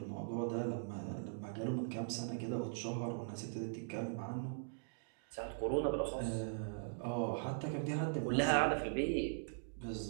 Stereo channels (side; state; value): left; silent; digital silence